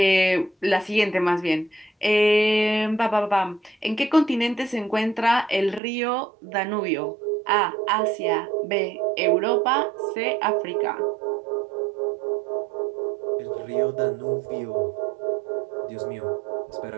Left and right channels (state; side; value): drops out; left; at 5.8 s